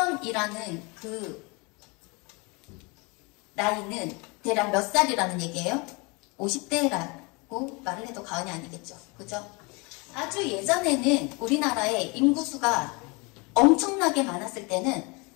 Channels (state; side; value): quieter; right; 28.7 dB